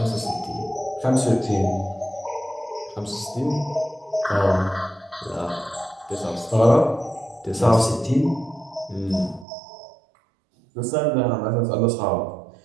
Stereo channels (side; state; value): left; drops out; at 9.5 s